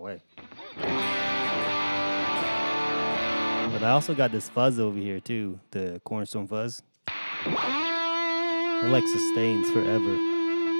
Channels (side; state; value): both; inverted; correlation -1.00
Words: But I also got this fuzz over here too, the Cornerstone fuzz. It like sustains forever.